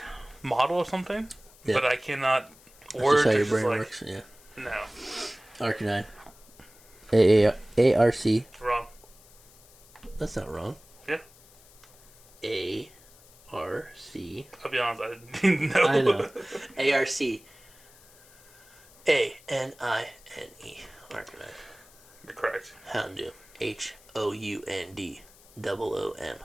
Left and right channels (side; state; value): left; noise; hiss, 25 dB below the sound